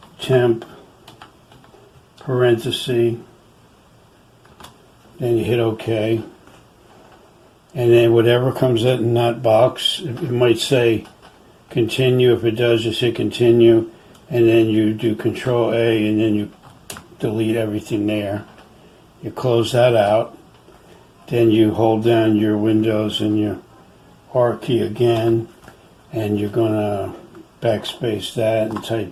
temp parenthesis, then you hit OK. And then whatever comes out in that box, it might say continue. If it does, just hit continue, and then you do Control A, and then you delete everything there. You close that out. Then you hold down your Windows and your R key again, and you're going to backspace that and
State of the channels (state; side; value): identical; both; correlation 1.00